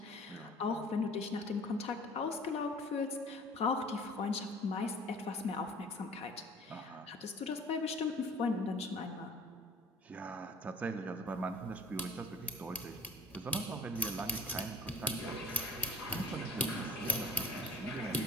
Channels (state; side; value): normal; both; correlation 0.49